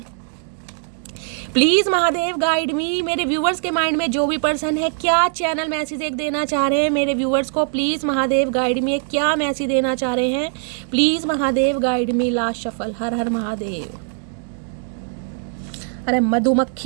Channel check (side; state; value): left; silent; digital silence